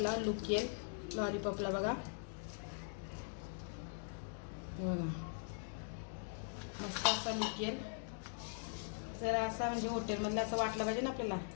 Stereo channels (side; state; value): right; silent; digital silence